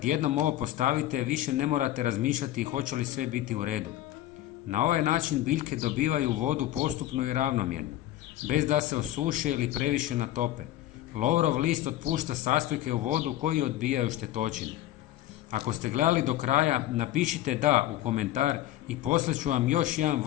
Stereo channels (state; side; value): quieter; right; 14.0 dB